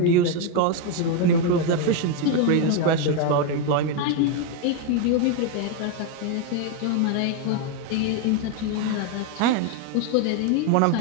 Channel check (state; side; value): different; both; correlation 0.01